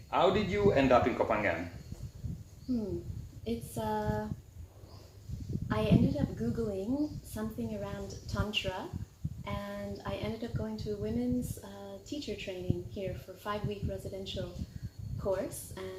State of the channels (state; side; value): identical; both; correlation 1.00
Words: how did you end up in Copenhagen? I ended up Googling something around Tantra, and I ended up going to a women's teacher training here for a 5-week residential course,